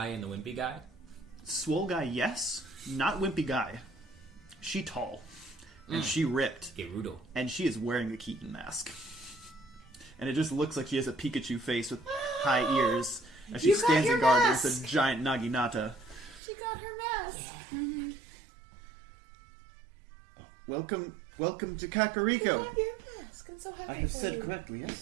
and the wimpy guy? Swole guy, yes. Not wimpy guy. She tall. And she ripped. Gerudo. And she is wearing the Keaton mask. And it just looks like she has a Pikachu face with high ears. As she You got stands your in guard mask! against a giant Naginata. She got her mask. Welcome to Kakariko. Your mask. I'm so happy I have for said you. correctly,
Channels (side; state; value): left; drops out; at 16.4 s